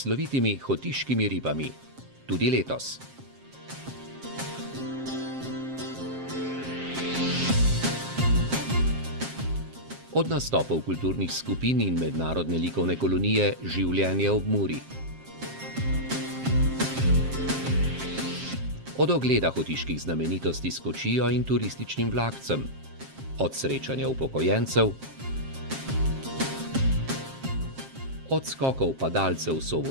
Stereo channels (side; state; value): left; late; 7.5 ms